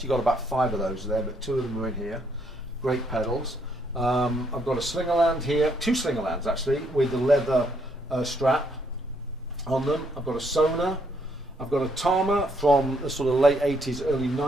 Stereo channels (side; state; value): both; normal; correlation 0.72